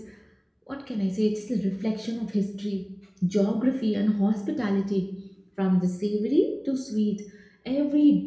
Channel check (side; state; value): both; identical; correlation 1.00